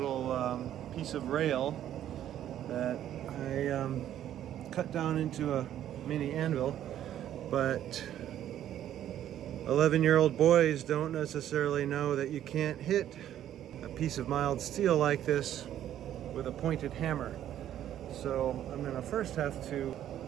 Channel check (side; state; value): left; quieter; 11.3 dB